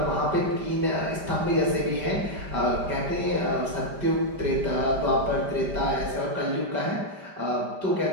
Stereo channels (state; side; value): late; left; 5.1 ms